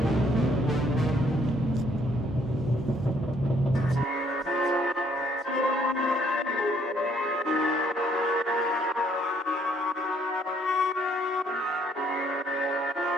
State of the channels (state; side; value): normal; both; correlation 0.66